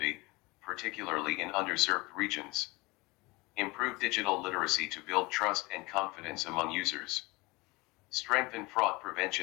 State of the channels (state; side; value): quieter; right; 23.9 dB